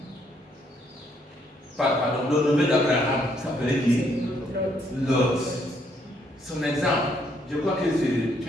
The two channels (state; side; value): normal; both; correlation 0.71